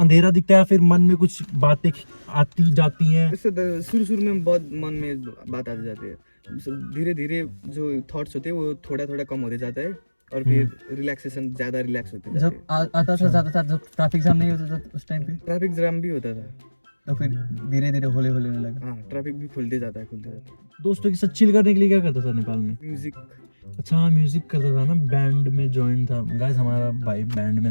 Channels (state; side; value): inverted; both; correlation -1.00